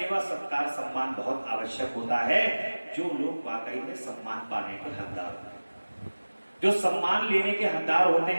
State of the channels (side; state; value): both; inverted; correlation -1.00